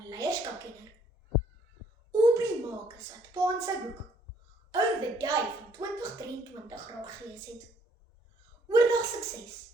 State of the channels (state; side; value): normal; both; correlation 0.64